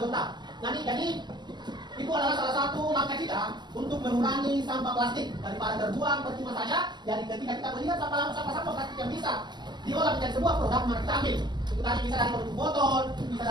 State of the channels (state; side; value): late; left; 0.21 ms